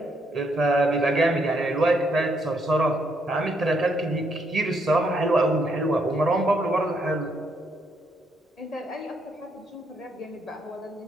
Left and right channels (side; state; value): both; normal; correlation 0.74